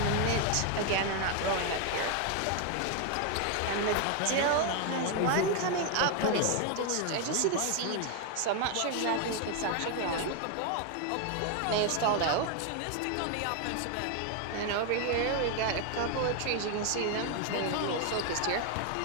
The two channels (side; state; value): both; different; correlation 0.01